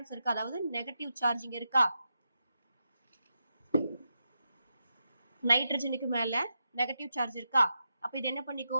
இருக்கு, அதாவது நெகட்டிவ் சார்ஜ் இங்க இருக்கா, நைட்ரஜனுக்கு மேல நெகட்டிவ் சார்ஜ் இருக்கா. அப்ப இது என்ன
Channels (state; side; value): inverted; both; correlation -0.87